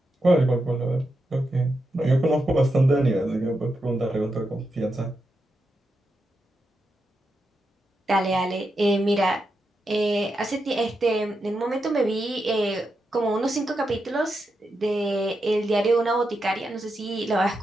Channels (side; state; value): both; normal; correlation 0.86